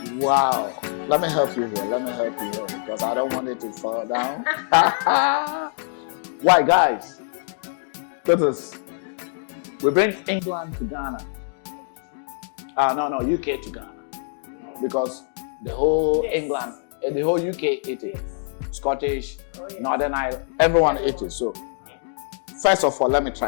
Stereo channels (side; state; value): right; silent; digital silence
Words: Wow. Let me help you here. Because I don't want it to fall down. Why, guys? Because we bring England to Ghana. UK to Ghana. Because the whole England, the whole UK ate it. Scottish, Northern Ireland, everyone ate it. So, first of all, let me